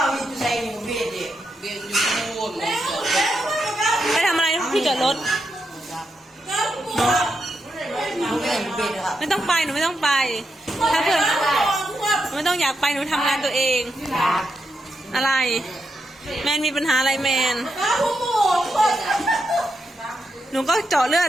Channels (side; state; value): both; normal; correlation 0.84